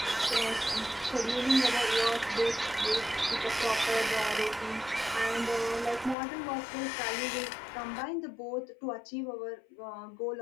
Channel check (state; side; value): drops out; right; at 6.2 s